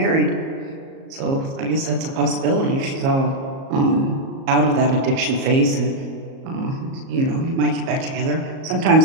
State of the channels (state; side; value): late; left; 37 ms